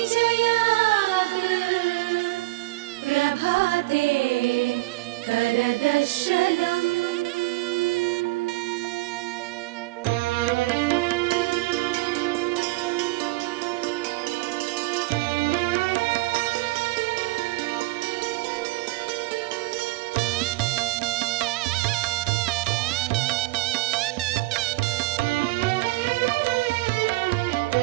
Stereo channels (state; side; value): quieter; left; 21.7 dB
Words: जया प्रभाते करदर्शनम्